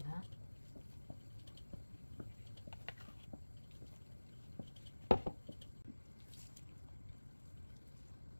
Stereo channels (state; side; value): inverted; both; correlation -1.00